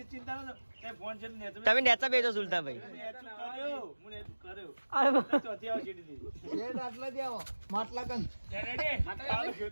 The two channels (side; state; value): both; inverted; correlation -1.00